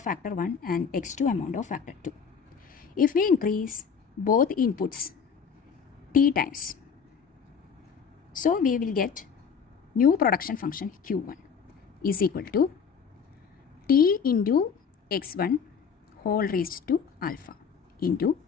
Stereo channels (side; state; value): right; quieter; 6.5 dB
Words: 1 and x2 amount of factor 2. If we increase both inputs T times, so we will get new production function Q1 is equal to T into x1 whole raised to alpha into